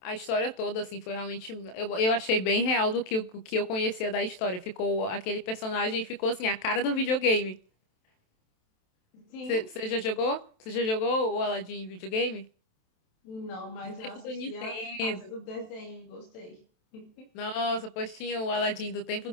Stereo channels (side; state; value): right; late; 27 ms